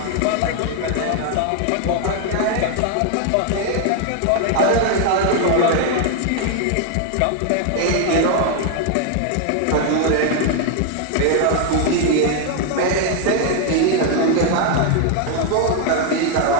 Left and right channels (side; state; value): both; different; correlation 0.00